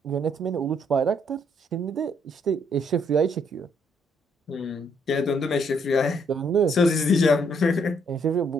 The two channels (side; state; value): both; normal; correlation 0.70